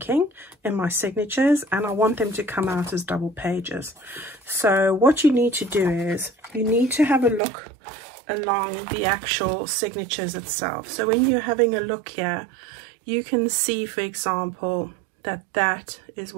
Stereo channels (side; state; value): left; drops out; at 7.4 s